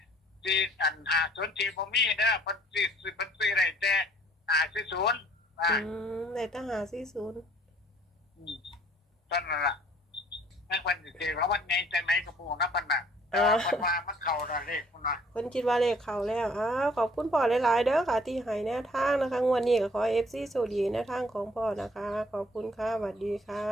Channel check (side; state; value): both; normal; correlation 0.59